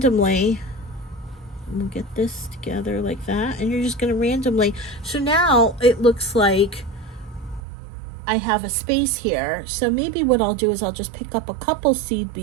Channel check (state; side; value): drops out; left; at 7.6 s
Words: we'll get this together like that, and you're just going to randomly, so now it looks like I have a space here. So maybe what I'll do is I'll just pick up a couple seed